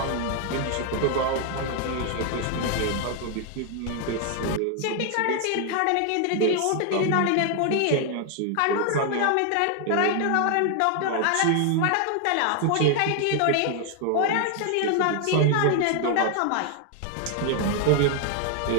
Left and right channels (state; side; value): different; both; correlation 0.00